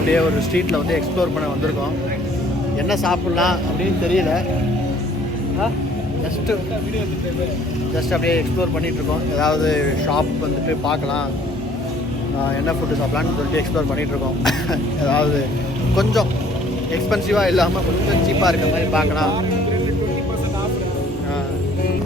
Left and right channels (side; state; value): both; normal; correlation 0.58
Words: ஒரு ஸ்ட்ரீட்டில் வந்து எக்ஸ்ப்ளோர் பண்ண வந்திருக்கோம். என்ன சாப்பிட்லாம் அப்படின்னு தெரியல. ஜஸ்ட் அப்படியே எக்ஸ்ப்ளோர் பண்ணிகிட்ருக்கோம். ஏதாவது ஷாப் வந்துட்டு பார்க்கலாம், என்ன ஃபுட்டு சாப்பிட்லான்னு சொல்லிட்டு எக்ஸ்ப்ளோர் பண்ணிகிட்ருக்கோம். ஏதாவது கொஞ்சம் எக்ஸ்பென்சிவாக இல்லாமல் கொஞ்சம் சீப்பாக இருக்கிற மாதிரி பார்க்கலாம்.